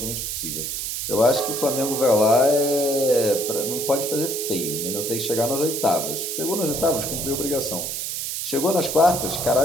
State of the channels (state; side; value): noise; right; hiss, 4 dB below the sound